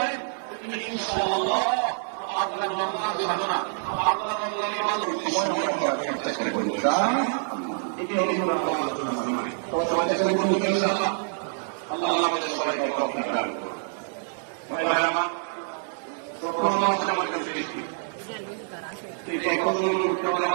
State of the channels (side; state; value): left; silent; digital silence